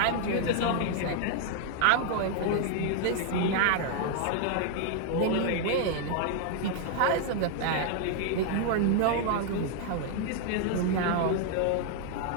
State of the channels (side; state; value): both; different; correlation 0.00